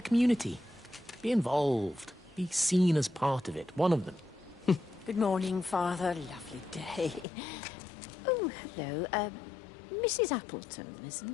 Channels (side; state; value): right; drops out; at 7.2 s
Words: community. Be involved. Be seen as part of it. One of them. Good morning, Father. Lovely day. Oh, hello. Mrs. Appleton,